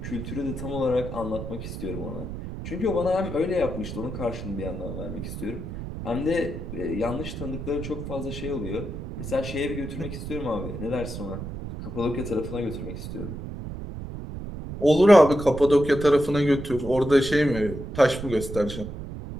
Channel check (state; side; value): noise; right; rumble, 8 dB below the sound